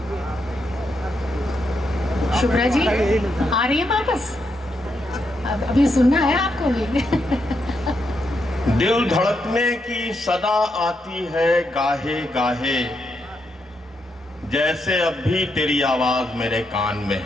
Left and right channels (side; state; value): both; normal; correlation 0.81